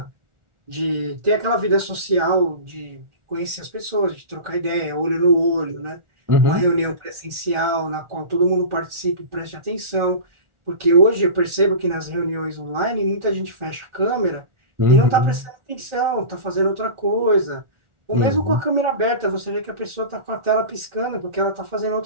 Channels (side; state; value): left; late; 1.4 ms